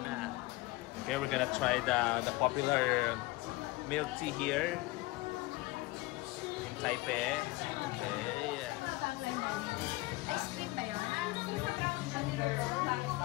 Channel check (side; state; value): right; quieter; 21.1 dB